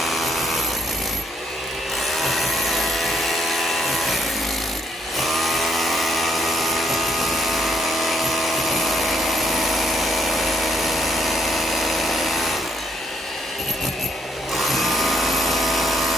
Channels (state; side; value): normal; both; correlation 0.72